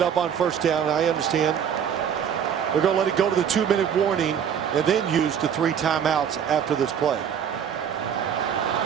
up on first down, I understand. They're going to let it go to the 2-minute warning and then use the 3 timeouts after this play.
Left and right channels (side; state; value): left; quieter; 8.2 dB